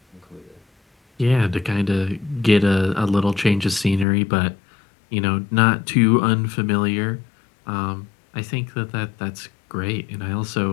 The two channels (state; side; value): drops out; right; at 4.0 s